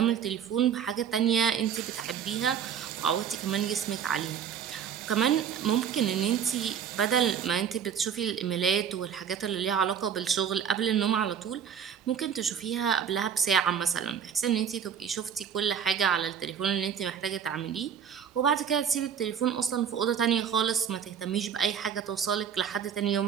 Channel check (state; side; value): quieter; left; 8.0 dB